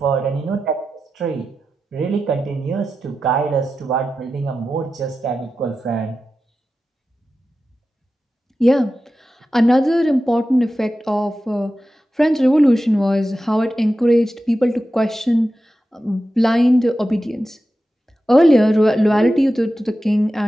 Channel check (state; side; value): normal; both; correlation 0.92